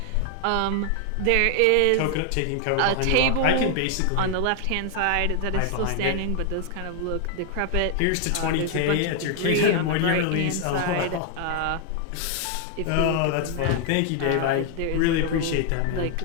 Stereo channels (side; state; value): both; different; correlation 0.00